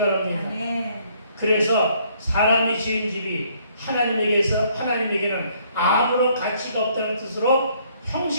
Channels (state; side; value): inverted; both; correlation -0.64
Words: 아멘. 그래서 사람이 지은 집이 하나님에게는 아무런 가치가 없다는 뜻으로